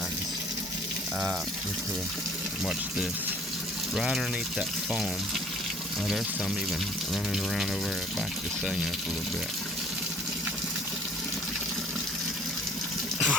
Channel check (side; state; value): both; normal; correlation 0.54